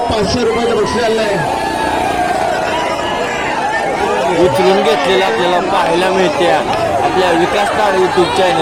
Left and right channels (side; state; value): both; identical; correlation 1.00